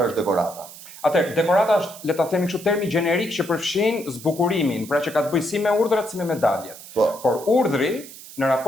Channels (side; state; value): right; noise; hiss, 16 dB below the sound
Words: është dekorata? Atëherë, dekorata është, le ta themi kështu, termi gjenerik që përfshin zbukurimin, pra që ka të bëjë si me urdhrat si me medaljet. Por urdhri në